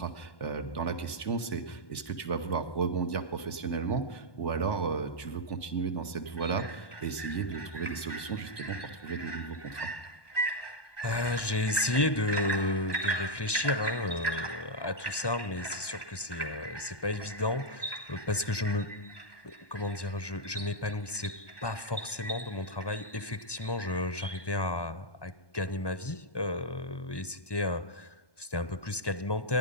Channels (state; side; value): late; right; 1.2 ms